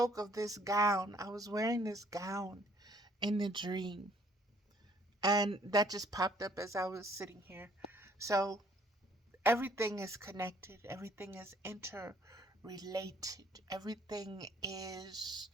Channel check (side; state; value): both; normal; correlation 0.61